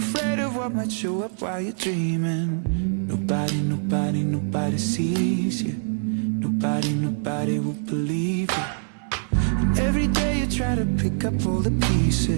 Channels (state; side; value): silent; left; 57 dB below the other